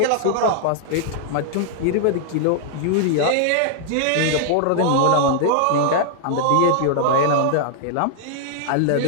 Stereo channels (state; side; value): different; both; correlation -0.01